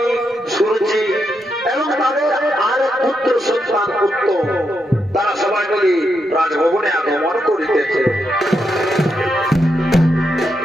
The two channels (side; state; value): both; normal; correlation 0.82